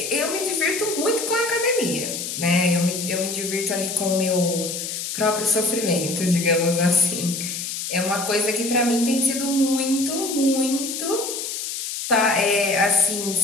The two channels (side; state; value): left; noise; hiss, 5 dB below the sound